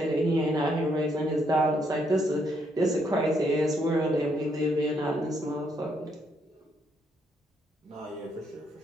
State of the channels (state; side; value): normal; both; correlation 0.73